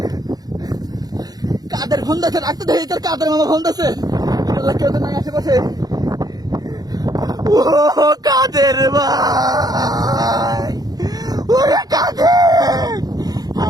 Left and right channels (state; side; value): late; left; 0.19 ms